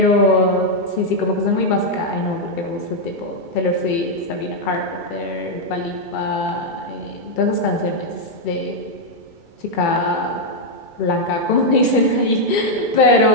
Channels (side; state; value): right; late; 2.3 ms